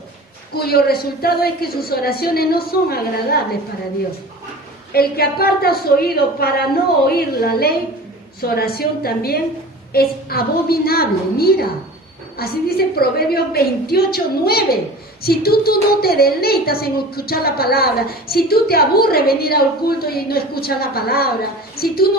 cuyo resultado es que sus oraciones no son agradables para Dios. El que aparta su oído para no oír la ley, su oración también es abominable. Mira, así dice Proverbios 28, 9. Si tú no te deleitas en escuchar la palabra, si tú te aburres venir al culto y no escuchas la palabra, si tú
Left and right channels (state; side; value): normal; both; correlation 0.38